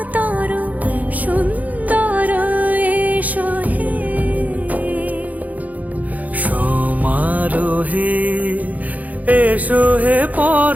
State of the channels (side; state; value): left; late; 0.077 ms